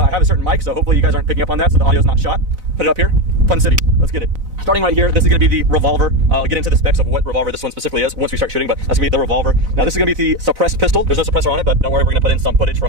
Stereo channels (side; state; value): left; late; 4.0 ms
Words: have a certain mic, so hopefully you guys aren't picking up on that, so the audio's not shot. Put it up here. Fun City. Let's get it. Starting right here, this is going to be the revolver. I'll get into the specs of what revolver this one specifically is once we start shooting, but that's going to be the revolver. Now this is going to be the suppressed pistol. There's no suppressor on it, but don't worry, we're going to put in some footage